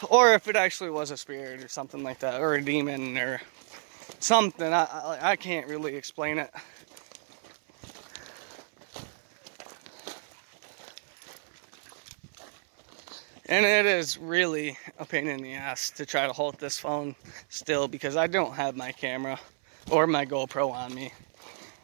Or if it actually was a spirit or something like that. Or a demon or something. I can't really explain it. And it is really a pain in the ass to try to hold this phone still because I don't have my camera or my GoPro on me.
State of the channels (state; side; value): silent; left; 58 dB below the other